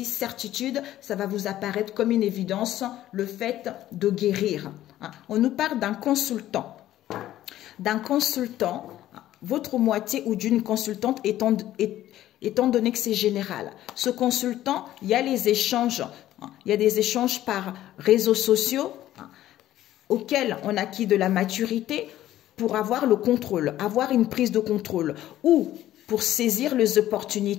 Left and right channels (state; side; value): quieter; right; 13.5 dB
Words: certitude, ça va vous apparaître comme une évidence, le fait de guérir. On nous parle d'un consultant. D'un consultant, votre moitié ou d'une consultante étant donné que c'est général. Ce consultant, il y a les échanges. Il y a des échanges par réseaux sociaux auxquels on acquit de la maturité pour avoir le contrôle, avoir une prise de contrôle ou pour saisir les